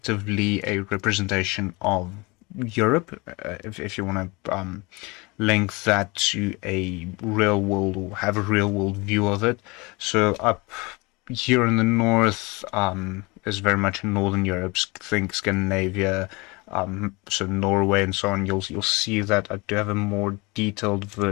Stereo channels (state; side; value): quieter; right; 26.0 dB